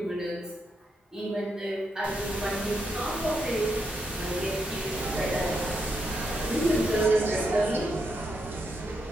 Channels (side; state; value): both; normal; correlation 0.81